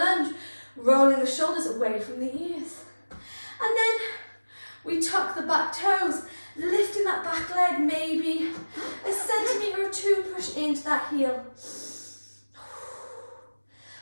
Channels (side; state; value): both; inverted; correlation -1.00